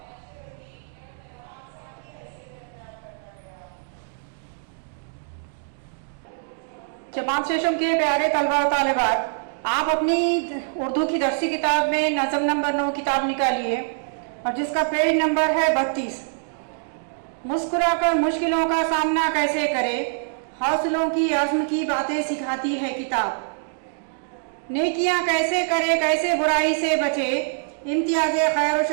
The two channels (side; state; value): left; silent; digital silence